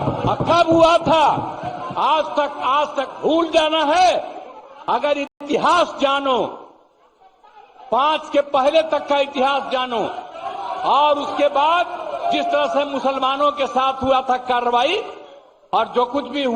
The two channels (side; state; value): both; identical; correlation 1.00